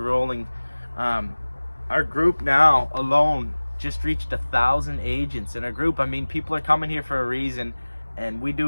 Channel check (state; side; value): inverted; both; correlation -1.00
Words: rolling. Our group now alone just reached 1,000 agents in our group. I mean, people are coming here for a reason, and we